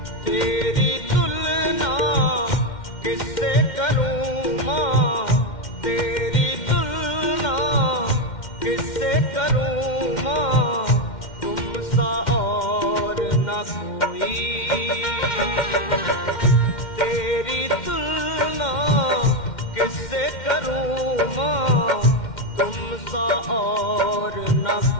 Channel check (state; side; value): late; right; 2.1 ms